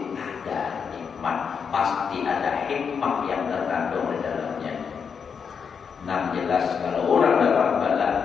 ada nikmat, pasti ada hikmah yang terkandung di dalamnya. Nah, jelas kalau orang dapat bala,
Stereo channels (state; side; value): quieter; right; 6.4 dB